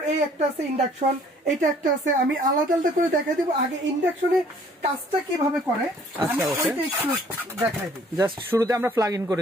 এই একটা আছে ইন্ডাকশন, এটা একটা আছে। আমি আলাদা আলাদা করে দেখাই দিব। আগে ইন্ডাকশনের কাজটা কিভাবে করে আমি ওইটা একটু দেখাই দিই। জাস্ট শুরুতে আমরা প্লাগ ইন করে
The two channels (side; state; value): both; normal; correlation 0.58